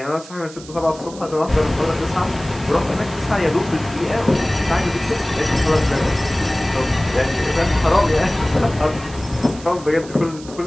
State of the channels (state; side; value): noise; right; hiss, 18 dB below the sound